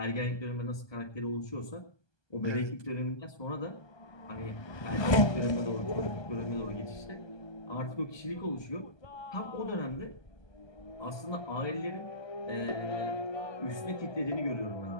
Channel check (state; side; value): late; right; 1.2 ms